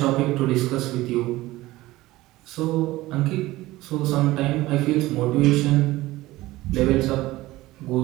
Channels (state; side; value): quieter; left; 17.9 dB